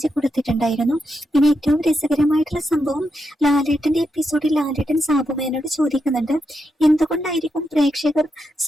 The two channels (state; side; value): normal; both; correlation 0.84